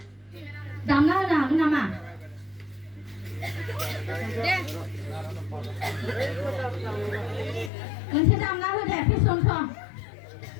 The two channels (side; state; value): right; drops out; at 7.7 s